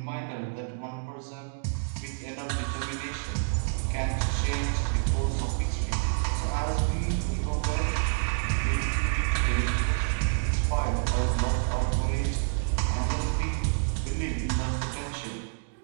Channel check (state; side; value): silent; left; digital silence